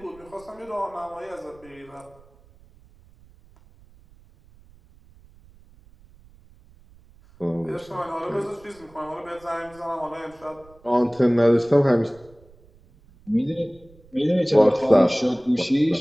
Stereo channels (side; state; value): right; noise; rumble, 27 dB below the sound